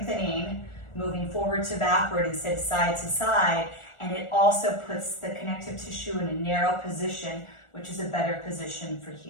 moving forward to backward instead of side to side. And it also puts the connective tissue in a narrow position, which is a better position for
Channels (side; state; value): right; late; 1.4 ms